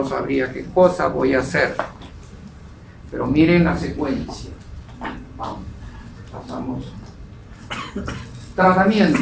sabría qué cosa voy a hacer. Pero miren la secuencia. Vamos, pasamos.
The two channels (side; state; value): both; identical; correlation 1.00